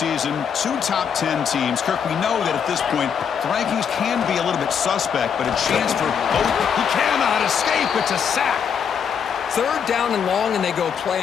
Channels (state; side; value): quieter; right; 7.4 dB